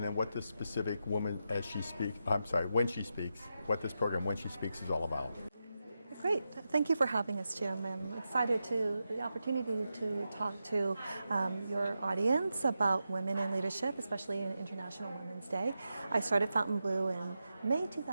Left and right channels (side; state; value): both; inverted; correlation -0.89